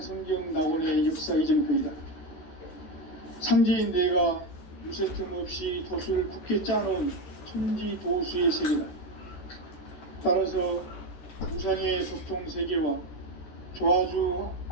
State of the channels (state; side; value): late; right; 13 ms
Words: 낙원의 역사 이정표이다. 상제인 내가 유세틈 없이 도수를 굳게 짜놓은 천지 도수의 세계다. 따라서 우상의 도통 세계와 조화주